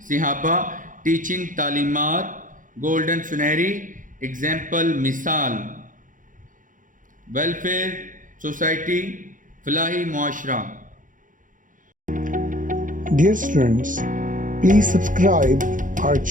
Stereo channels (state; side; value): late; left; 0.38 ms